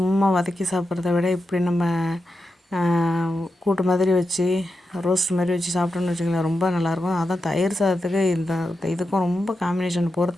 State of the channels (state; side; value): normal; both; correlation 0.89